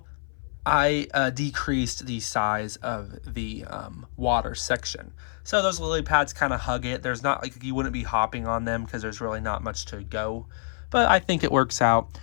I decreased the size of the water section. So those lily pads kind of hug it. There's not, like, you wouldn't be hopping on them because there's really not much to go. But I think it works out.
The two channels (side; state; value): right; silent; 58 dB below the other